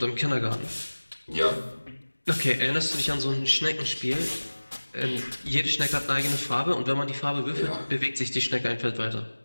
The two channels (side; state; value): both; inverted; correlation -1.00